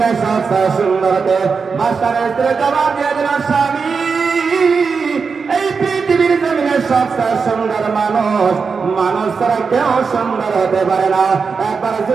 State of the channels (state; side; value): quieter; left; 5.2 dB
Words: সবচেয়ে সুন্দর কে? বাদশাহের স্ত্রী জবাব দিয়ে দিল, স্বামী, এই পৃথিবীর জমিনে সবচেয়ে সুন্দর মানুষ, মানুষ ছাড়া কেউ সুন্দর হতে পারে না। একবার